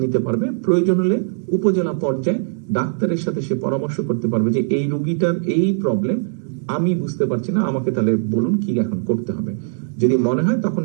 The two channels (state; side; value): silent; left; 64 dB below the other